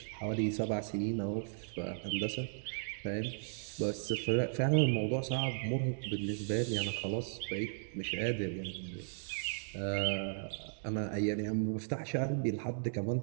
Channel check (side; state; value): left; silent; digital silence